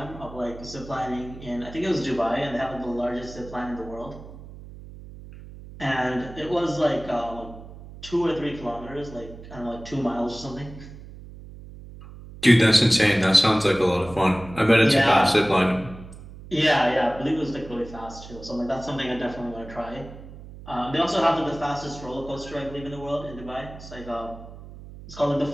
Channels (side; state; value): right; noise; hum, 16 dB below the sound